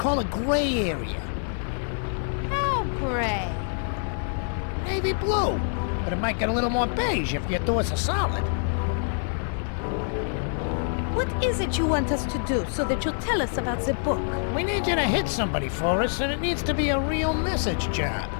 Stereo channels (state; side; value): silent; right; digital silence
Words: a gray area. How gray? Navy blue. But it might get a little more beige if you do us a solid. What is it you want us to do so that you'll tell us about the book? We need you to hit somebody for us, and it needs to be a real message job.